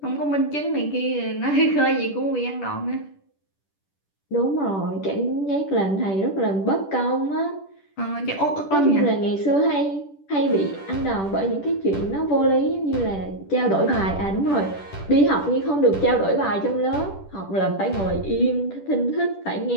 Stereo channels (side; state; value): right; late; 10 ms